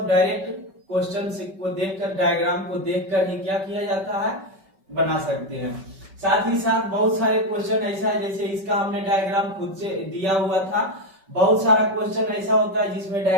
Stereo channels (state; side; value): late; left; 5.2 ms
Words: डायरेक्ट क्वेश्चन को देखकर, डायग्राम को देखकर ही क्या किया जाता है? बना सकते हैं। साथ ही साथ बहुत सारे क्वेश्चन ऐसा है, जैसे इसका हमने डायग्राम खुद से दिया हुआ था। बहुत सारा क्वेश्चन ऐसा होता है जिसमें